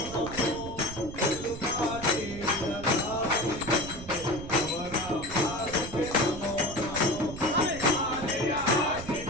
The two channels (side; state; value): right; noise; rumble, 12 dB below the sound